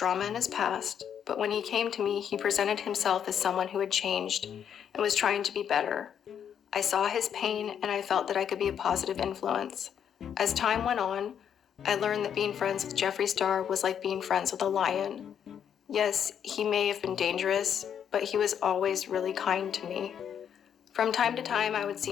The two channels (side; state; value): right; quieter; 8.6 dB